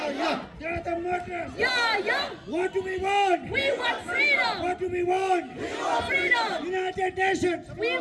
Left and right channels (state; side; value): identical; both; correlation 1.00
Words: are the murderers. Yeah, yeah. What do we want? We want freedom. What do we want? We want freedom. United Nations. We